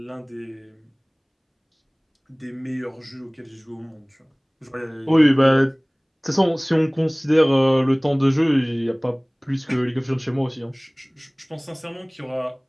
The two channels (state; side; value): identical; both; correlation 1.00